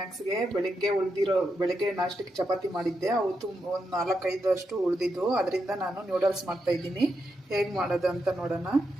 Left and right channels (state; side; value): normal; both; correlation 0.84